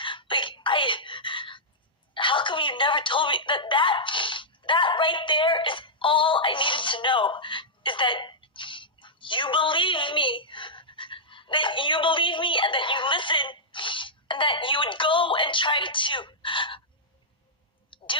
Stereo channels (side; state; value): both; normal; correlation -0.10